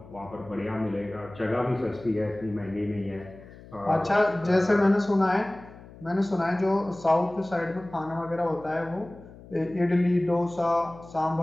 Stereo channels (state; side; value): noise; left; hum, 19 dB below the sound